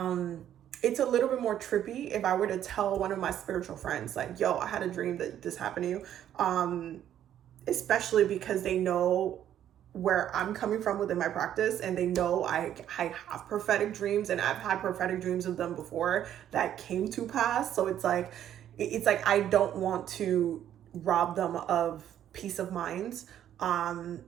It's a little bit more trippy if I were to tell one of my spiritual friends, like, yo, I had a dream that this happened to you. Especially because they know where I'm coming from within my practice, and they know I have prophetic dreams, and I've had prophetic dreams of them before that came to pass. So it's like I don't want to rob them of peace of mind.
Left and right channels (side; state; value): left; quieter; 10.8 dB